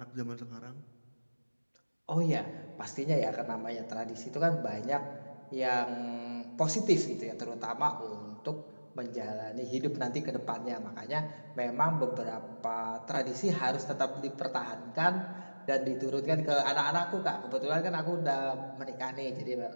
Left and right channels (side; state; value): both; inverted; correlation -1.00